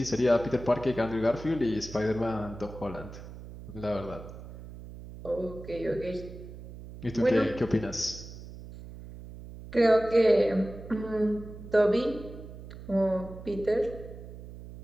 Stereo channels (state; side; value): noise; right; hum, 14 dB below the sound